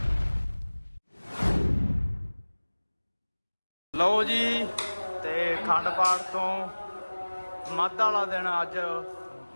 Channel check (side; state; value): both; inverted; correlation -1.00